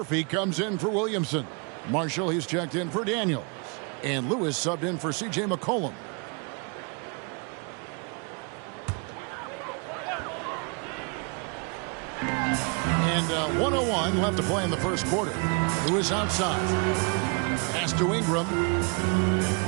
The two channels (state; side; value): quieter; left; 35.3 dB